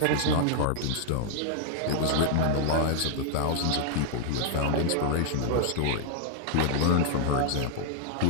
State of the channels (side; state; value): both; different; correlation 0.00